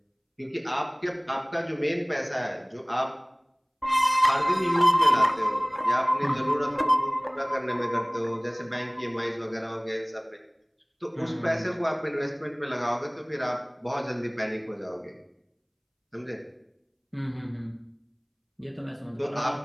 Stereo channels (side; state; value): both; identical; correlation 1.00